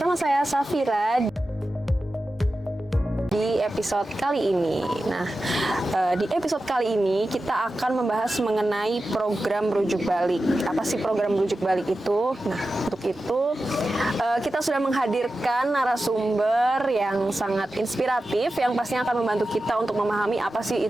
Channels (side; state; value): both; normal; correlation 0.93